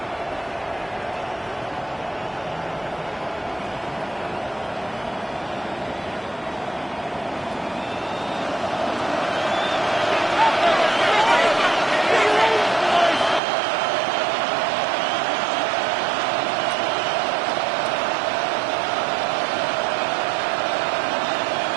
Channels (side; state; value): left; drops out; at 13.4 s